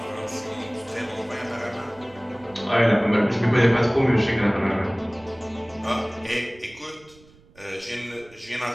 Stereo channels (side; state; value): right; noise; rumble, 26 dB below the sound